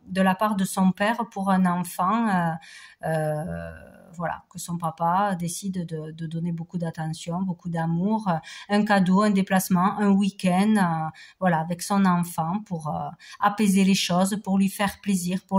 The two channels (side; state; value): both; identical; correlation 1.00